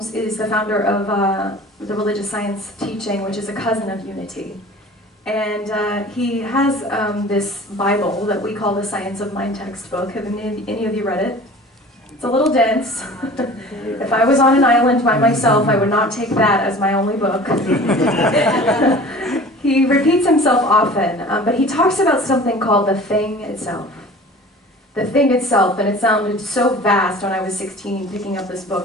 is the founder of the Religious Science teaching, which is a cousin of Unity. And he has this Bible that we call the Science of Mind textbook. Have any of you read it? It's a little dense. If I was on an island by myself, I would not take that as my only book. He repeats himself often, but he talks about something called the thing itself. The thing itself, and it sounded so vast when I was 16 picking up this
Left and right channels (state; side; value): normal; both; correlation 0.43